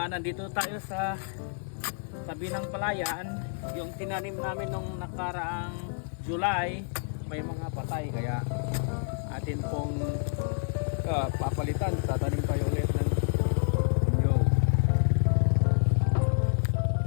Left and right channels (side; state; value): right; silent; 59 dB below the other